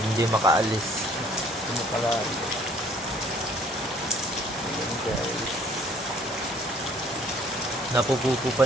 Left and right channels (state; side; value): normal; both; correlation 0.58